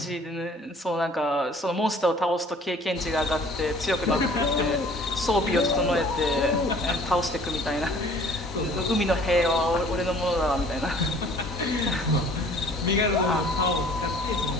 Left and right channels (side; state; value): both; normal; correlation 0.52